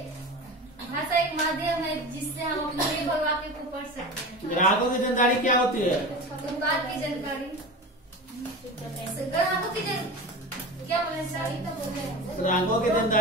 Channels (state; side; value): normal; both; correlation 0.30